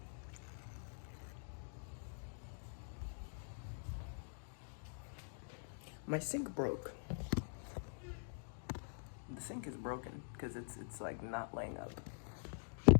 My sink broke. The sink is broken because it's like not laying up.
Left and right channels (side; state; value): right; silent; digital silence